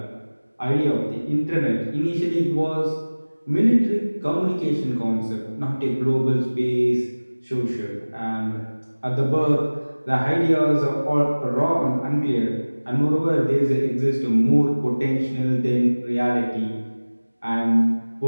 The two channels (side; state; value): both; inverted; correlation -1.00